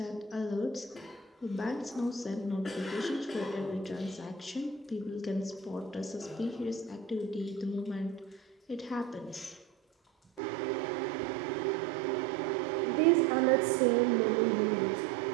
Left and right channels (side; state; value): left; drops out; at 10.4 s